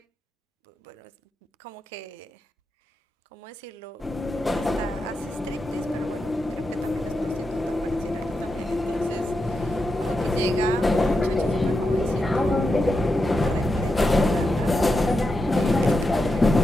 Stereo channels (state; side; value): normal; both; correlation 0.87